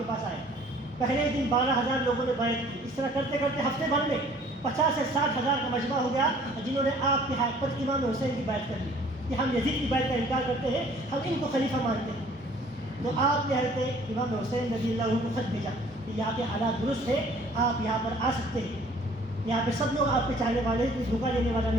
پاس آئے۔ پہلے دن 12,000 لوگوں نے بیعت کی، اس طرح کرتے کرتے ہفتے بھر میں 50 سے 60,000 کا مجمع ہو گیا جنہوں نے آپ کے ہاتھ پر امام حسین کی بیعت کر لی کہ ہم یزید کی بیعت کا انکار کرتے ہیں، ہم ان کو خلیفہ مانتے ہیں۔ تو آپ نے حضرت امام حسین رضی اللہ عنہ کو خط بھیجا کہ یہاں کے حالات درست ہیں، آپ یہاں پر آ سکتے ہیں، یہاں پہ سب لوگ آپ کے چاہنے والے ہیں، کوئی دھوکہ دینے والا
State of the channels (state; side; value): normal; both; correlation 0.54